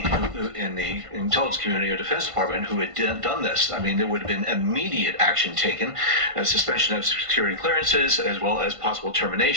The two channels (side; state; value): left; late; 1.5 ms